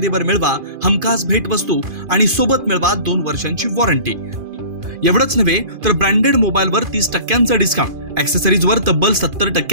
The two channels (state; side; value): late; left; 2.5 ms